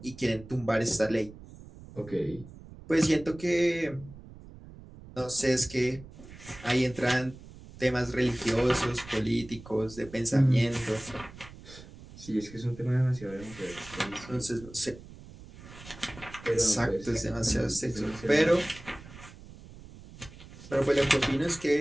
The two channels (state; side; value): noise; right; rumble, 18 dB below the sound